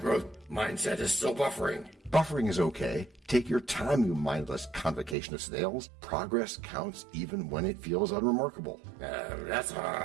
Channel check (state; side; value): drops out; left; at 5.2 s